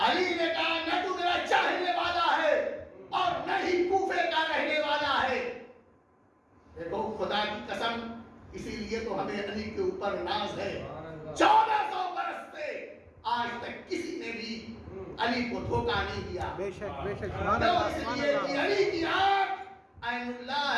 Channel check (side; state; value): both; identical; correlation 1.00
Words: علی نے کہا نہ تو میرا چاہنے والا ہے اور نہ ہی کوفے کا رہنے والا ہے. دیکھو خدا کی قسم اسی لیے تو ہمیں علی کے اوپر ناز ہے. 1400 برس سے آج تک کسی نے بھی علی کو دھوکہ نہیں دیا. بے شک بے شک. اس لیے کہ علی کی آنکھ عین اللہ